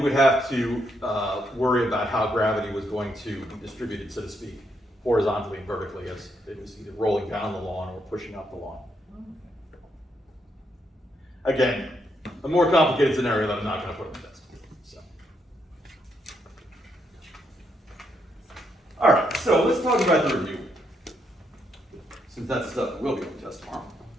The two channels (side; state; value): both; normal; correlation 0.77